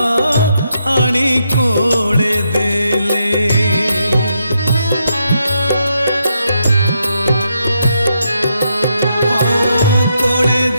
आनी कोड़े देले कोड़े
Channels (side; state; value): both; inverted; correlation -0.80